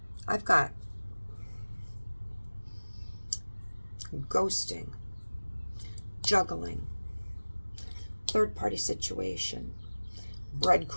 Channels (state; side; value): inverted; both; correlation -1.00